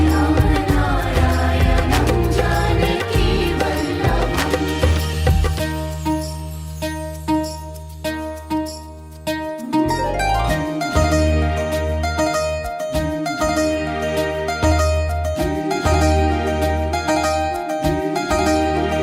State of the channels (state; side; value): identical; both; correlation 1.00